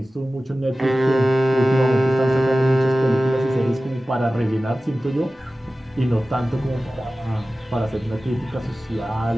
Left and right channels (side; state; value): both; normal; correlation 0.96